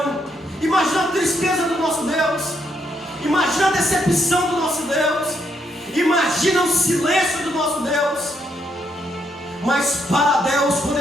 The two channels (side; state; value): both; normal; correlation 0.75